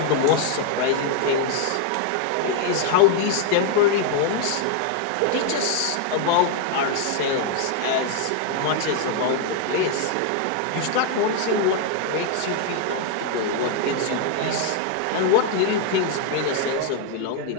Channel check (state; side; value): different; both; correlation 0.00